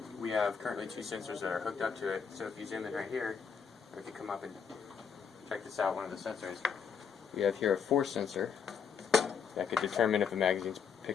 we have currently 2 sensors that are hooked up to it. So if you zoom in right here, or if you come up and check this out, one of the sensors, we have here a force sensor that could determine if a magazine's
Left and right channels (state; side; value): quieter; right; 6.7 dB